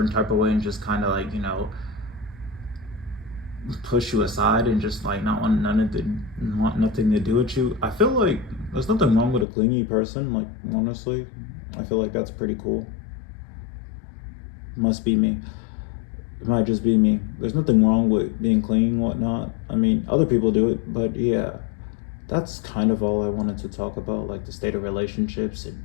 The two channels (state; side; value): drops out; right; at 9.5 s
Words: type of way and just kind of like, you know, push you aside and just like not want want nothing to do with you. I feel like there's nothing wrong with a clingy person. Like honestly, I feel like that's pretty cool. Must be me. It might just be me. There's nothing wrong with being clingy and whatnot. I mean, other people do it, but yeah, that's kind of all I wanted to talk about, like the state of relationships in